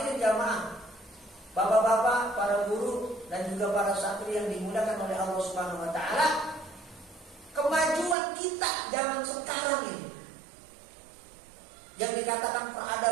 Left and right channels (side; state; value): left; drops out; at 8.2 s